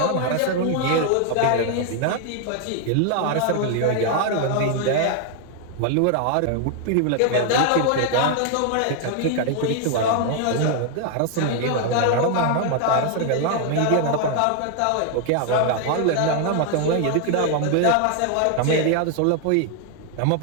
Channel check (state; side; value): different; both; correlation 0.00